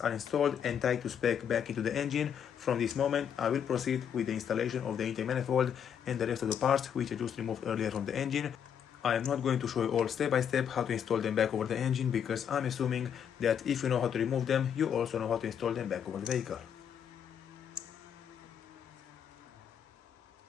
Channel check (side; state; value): right; quieter; 8.3 dB